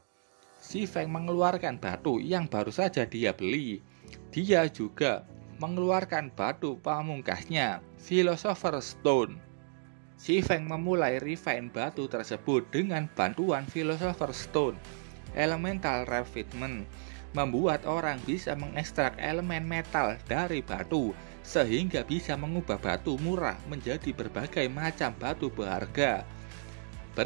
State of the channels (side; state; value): left; silent; digital silence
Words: Si Feng mengeluarkan batu yang baru saja dia beli. Dia juga mengeluarkan batu pamungkasnya, Philosopher Stone. Si Feng memulai refine batu tersebut dengan bantuan Philosopher Stone. Elemental Refinement membuat orang bisa mengekstrak elemen metal dari batu, sehingga bisa mengubah batu murah menjadi berbagai macam batu berharga.